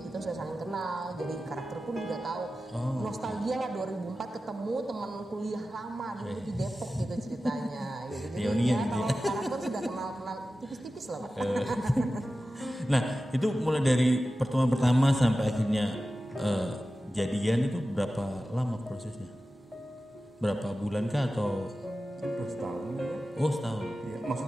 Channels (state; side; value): normal; both; correlation 0.94